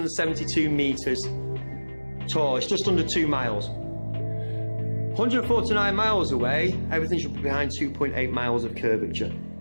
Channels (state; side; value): inverted; both; correlation -1.00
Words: meters tall. It's just under 2 miles. 149 miles away, everything should be behind 2.8 miles of curvature.